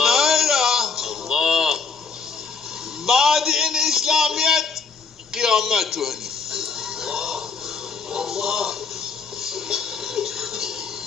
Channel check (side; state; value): right; quieter; 5.2 dB